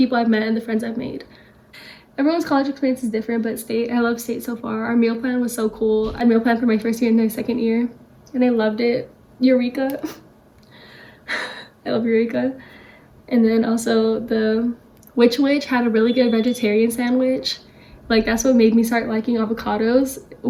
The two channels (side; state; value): both; identical; correlation 1.00